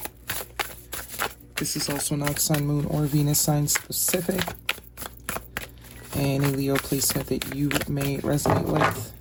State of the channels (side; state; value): both; identical; correlation 1.00